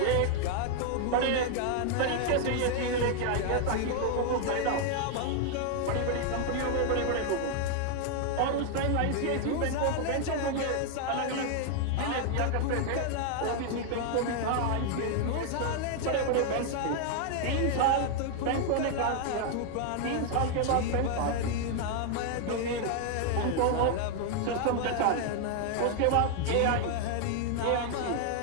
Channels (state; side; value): different; both; correlation 0.00